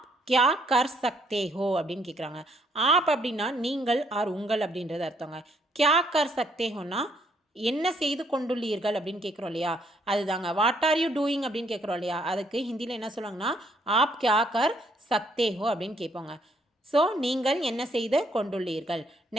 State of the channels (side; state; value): both; normal; correlation 0.69